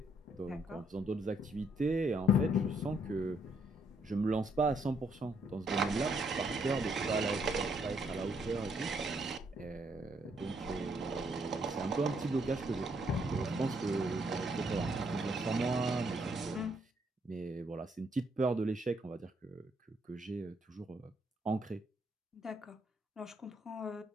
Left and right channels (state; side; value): normal; both; correlation 0.72